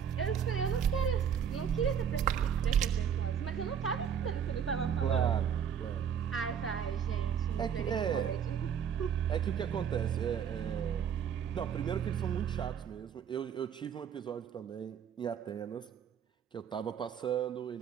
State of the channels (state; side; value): quieter; left; 8.0 dB